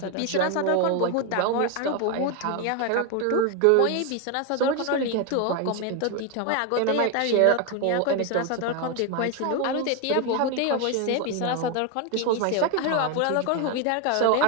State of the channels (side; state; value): both; different; correlation 0.01